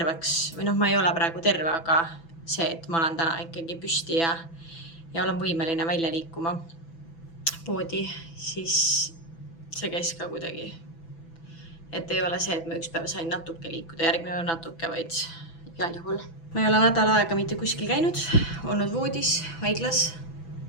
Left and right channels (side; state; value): right; late; 6.0 ms